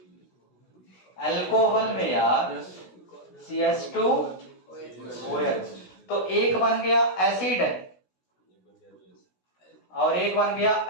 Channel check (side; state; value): right; late; 16 ms